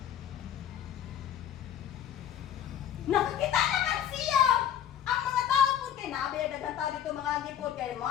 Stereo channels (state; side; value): quieter; right; 10.1 dB